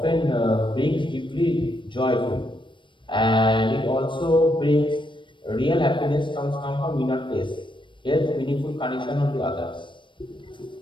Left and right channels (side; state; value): right; late; 0.24 ms